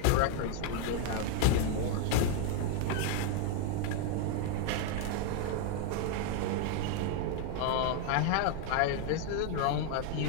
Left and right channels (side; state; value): both; different; correlation 0.00